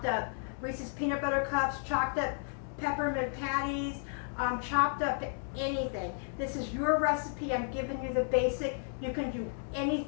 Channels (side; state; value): right; silent; 56 dB below the other